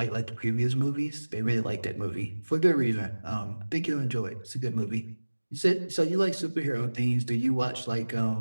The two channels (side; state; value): both; inverted; correlation -1.00